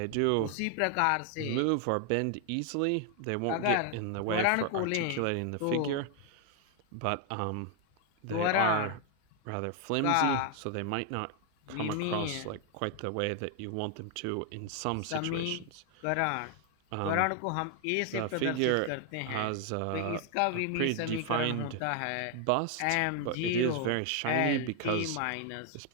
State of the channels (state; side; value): different; both; correlation 0.00